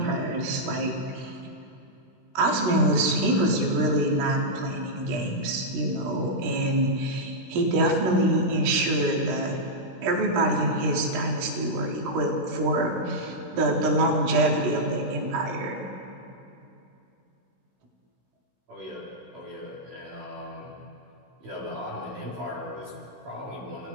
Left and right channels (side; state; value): left; late; 17 ms